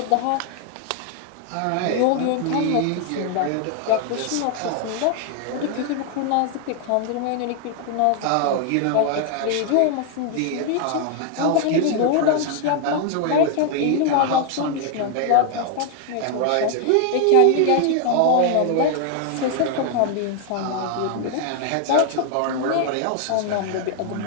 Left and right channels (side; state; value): both; different; correlation 0.00